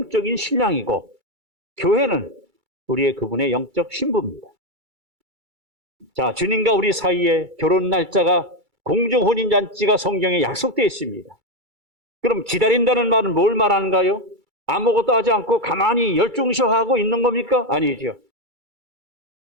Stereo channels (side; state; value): left; late; 2.3 ms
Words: 신랑이고 교회는 우리의 그분의 영적 신부입니다. 자, 주님과 우리 사이에 결혼 날짜가 공중 혼인잔치가 성경에 약속되어 있습니다. 그럼 기다린다는 말은 뭘 말하는가요? 아무것도 하지 않고 가만히 열중쇼하고 있는 겁니까? 아니죠.